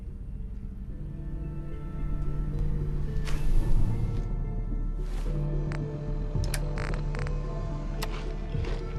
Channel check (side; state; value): both; identical; correlation 1.00